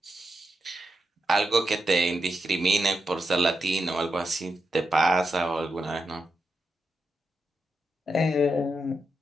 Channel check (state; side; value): normal; both; correlation 0.86